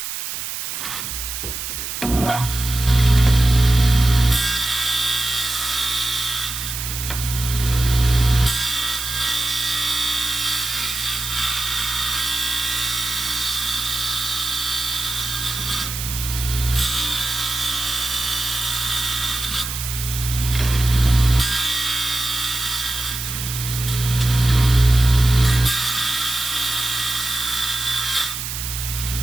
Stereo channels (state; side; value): noise; right; hiss, 6 dB below the sound